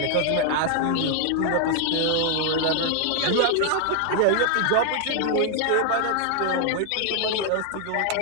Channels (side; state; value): both; different; correlation 0.00